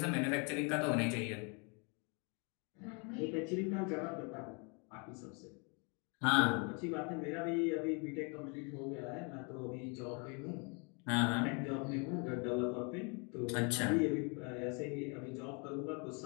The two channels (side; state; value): right; quieter; 34.1 dB